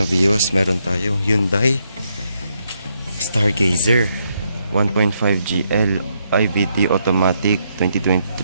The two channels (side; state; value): both; inverted; correlation -0.77